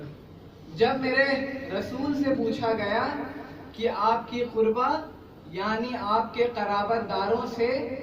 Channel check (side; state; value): both; identical; correlation 1.00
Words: जब मेरे रसूल से पूछा गया कि आपकी कुर्बा यानी आपके कराबतदारों से